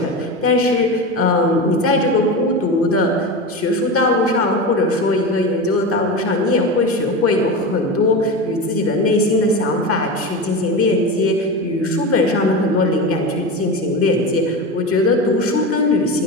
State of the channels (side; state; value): both; normal; correlation 0.24